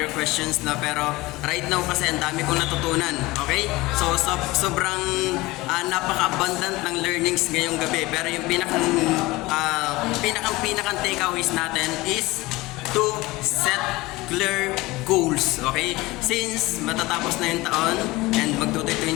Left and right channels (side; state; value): right; quieter; 20.5 dB